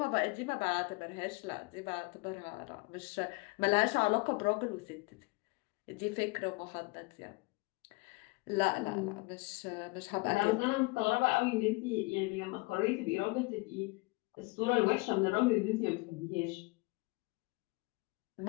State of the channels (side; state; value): right; quieter; 25.7 dB